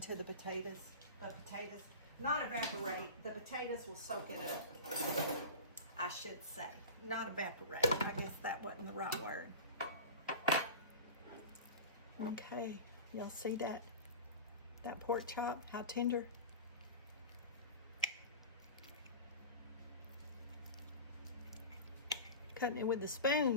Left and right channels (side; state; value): both; inverted; correlation -0.32